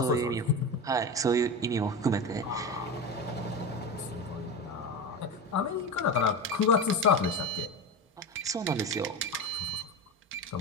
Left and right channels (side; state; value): both; normal; correlation 0.23